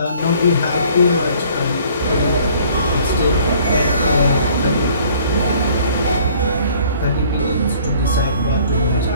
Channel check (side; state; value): both; inverted; correlation -0.56